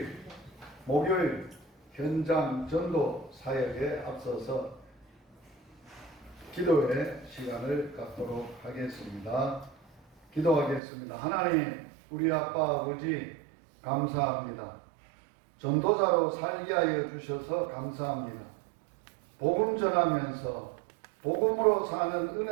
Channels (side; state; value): left; drops out; at 10.8 s